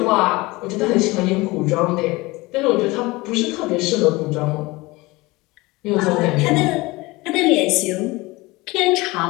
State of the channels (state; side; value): quieter; right; 22.1 dB